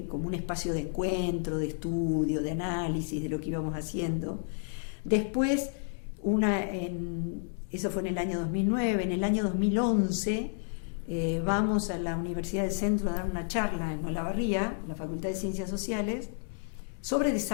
como un espacio de encuentro, de estudio, de análisis de lo que íbamos haciendo. Después, eso fue en el año 2009, en el año 2011 vamos a la Universidad del Centro a dar una charla en Olavarría, la Facultad de Ciencias Sociales, sobre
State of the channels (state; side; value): silent; right; digital silence